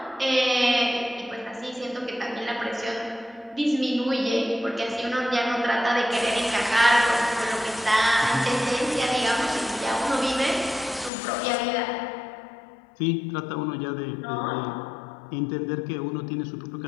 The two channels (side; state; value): right; drops out; at 11.1 s